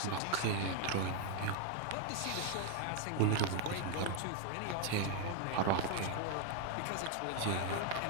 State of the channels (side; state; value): both; different; correlation 0.00